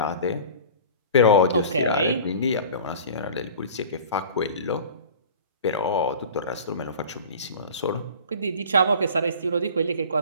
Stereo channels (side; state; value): both; inverted; correlation -0.40